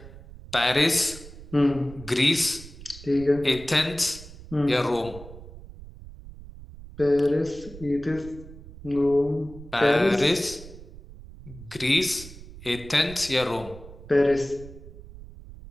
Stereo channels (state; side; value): noise; right; rumble, 16 dB below the sound